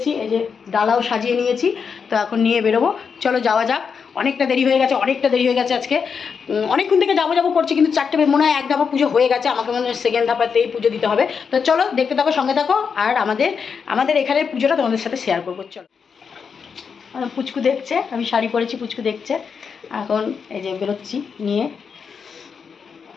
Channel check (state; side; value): quieter; right; 6.1 dB